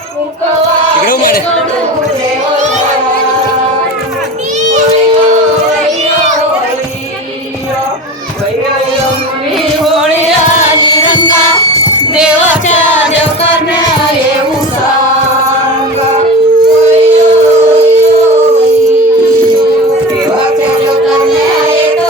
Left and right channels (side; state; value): both; normal; correlation 0.31